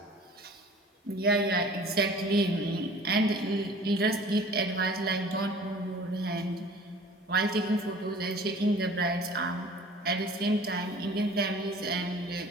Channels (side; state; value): both; normal; correlation 0.47